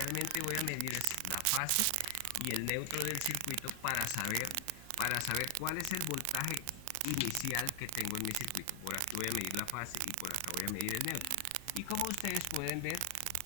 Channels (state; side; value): different; both; correlation 0.00